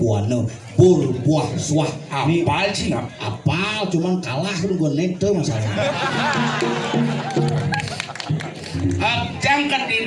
pur, buah, suah. Apal sih ngap? Apal, cuman kalah kan gue nete masalah. Jangkat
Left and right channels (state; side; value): identical; both; correlation 1.00